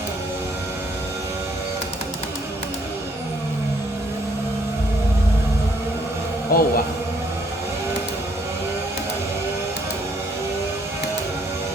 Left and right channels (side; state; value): both; normal; correlation 0.67